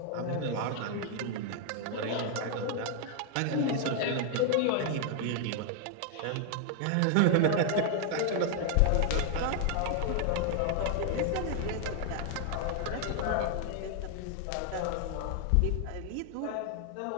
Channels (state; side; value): different; both; correlation 0.00